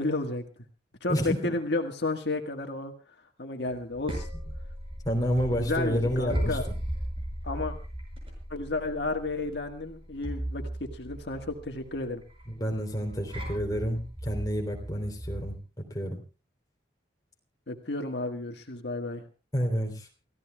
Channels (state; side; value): normal; both; correlation 0.56